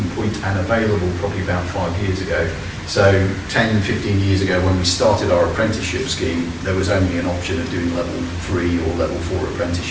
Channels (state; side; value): identical; both; correlation 1.00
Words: point and available probably about 5 years ago. So 10, 15 years ago, when we started our apprenticeship scheme, there was only an option of doing level 3 or level 4